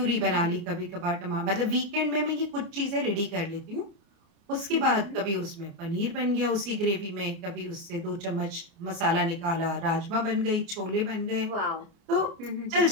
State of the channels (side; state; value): left; late; 29 ms